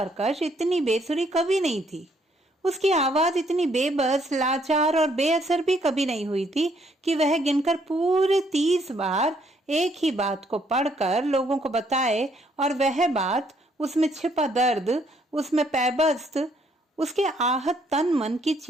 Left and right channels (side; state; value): both; normal; correlation 0.69